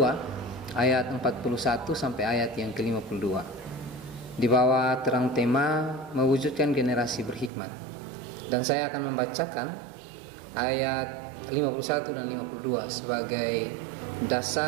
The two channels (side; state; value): left; drops out; at 7.5 s